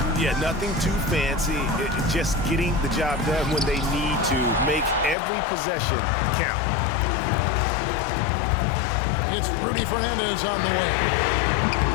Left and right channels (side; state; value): right; drops out; at 5.2 s